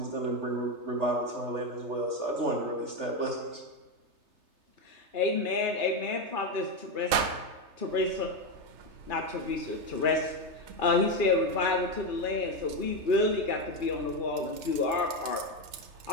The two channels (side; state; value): left; late; 3.3 ms